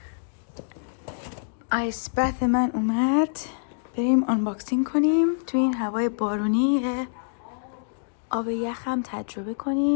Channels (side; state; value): right; silent; digital silence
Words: آیس برف من اومد، بریم آنباکسینگ کنیم. تو این هوای بارونی آب یخم تجربه